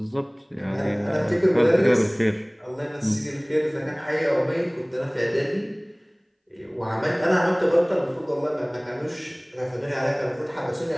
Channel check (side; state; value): both; identical; correlation 1.00